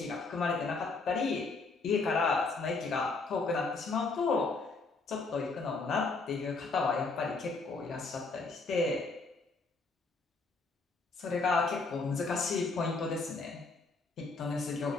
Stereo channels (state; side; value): quieter; right; 3.9 dB